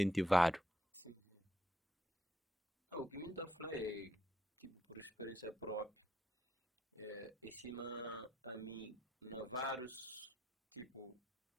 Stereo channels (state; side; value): normal; both; correlation 0.76